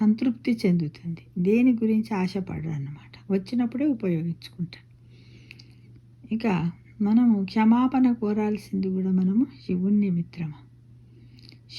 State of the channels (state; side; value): identical; both; correlation 1.00